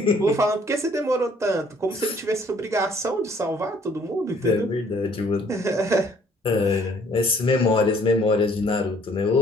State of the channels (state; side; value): normal; both; correlation 0.60